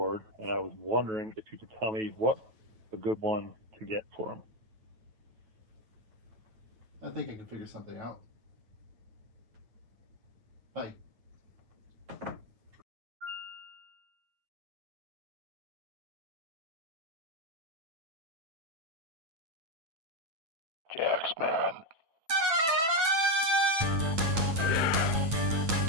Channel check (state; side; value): late; left; 9.2 ms